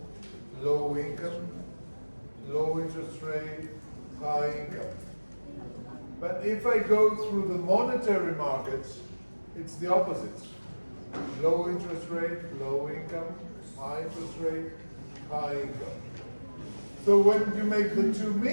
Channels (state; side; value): inverted; both; correlation -1.00